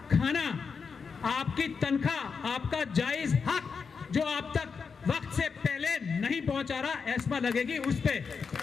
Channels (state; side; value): quieter; right; 5.6 dB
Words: खाना, आपकी तनख्वाह, आपका जायज हक जो आप तक वक्त से पहले नहीं पहुंचा रहा, एस्मा लगेगी उस पे।